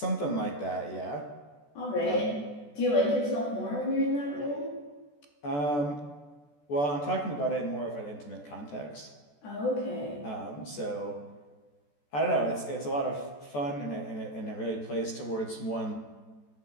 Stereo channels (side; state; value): right; late; 14 ms